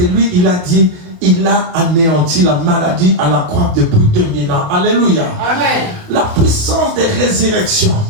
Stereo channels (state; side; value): late; left; 28 ms